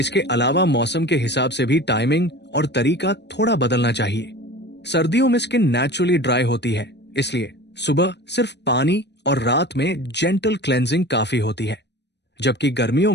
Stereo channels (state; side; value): late; right; 0.50 ms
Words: अलावा मौसम के हिसाब से भी टाइमिंग और तरीका थोड़ा बदलना चाहिए। सर्दियों में स्किन नेचुरली ड्राई होती है, इसलिए सुबह सिर्फ पानी और रात में जेंटल क्लेंजिंग काफी होती है। जबकि गर्मियों